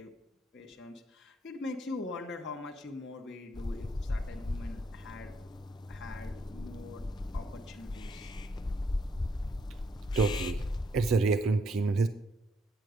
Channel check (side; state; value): both; normal; correlation 0.73